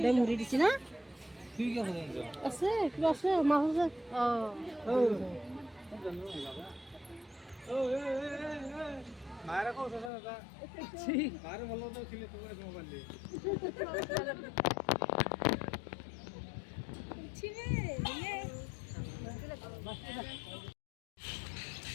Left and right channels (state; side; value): drops out; right; at 10.1 s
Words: মুড়ি দিছে না আছে কিবা আছে মাছ আছে মায়েরা কো সোসা দাদা মায়ের বললো তো ছিলে তোমার মোবাইল দিয়ে